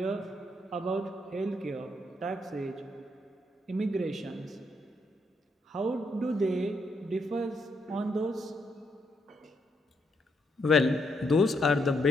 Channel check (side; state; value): both; normal; correlation 0.77